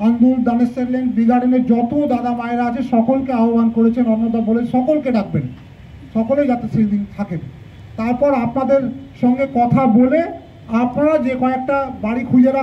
আন্দুল, দানেশ্বর লেন, বি গার্ডেনের যত দাদা মায়েরা আছে সকলকে আহ্বান করেছেন, অন্নদা বলে সকলকে ডাকবেন, সকলেই যাতে সেই দিন থাকেন। তারপর আপনাদের সঙ্গে কথা বলে আপনারা যে কয়েকটা বাড়ি খুঁজে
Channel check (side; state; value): both; identical; correlation 1.00